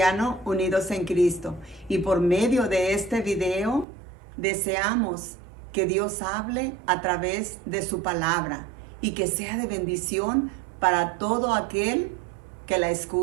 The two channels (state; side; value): drops out; left; at 3.9 s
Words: Unidos en Cristo. Y por medio de este video deseamos que Dios hable a través de su palabra y que sea de bendición para todo aquel que la